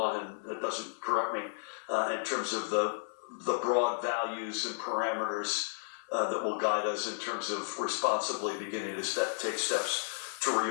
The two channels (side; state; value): right; silent; 56 dB below the other